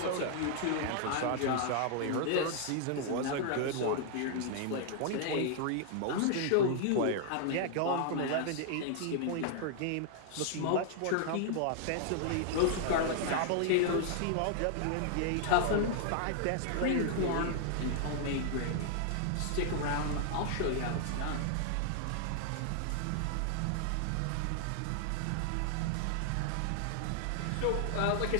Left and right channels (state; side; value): different; both; correlation 0.00